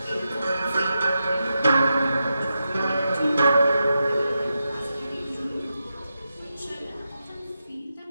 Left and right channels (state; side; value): inverted; both; correlation -0.88